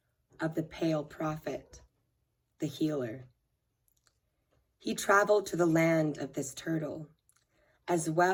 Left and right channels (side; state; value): both; identical; correlation 1.00